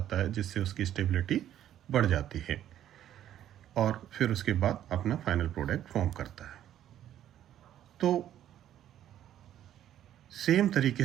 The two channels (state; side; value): quieter; left; 11.4 dB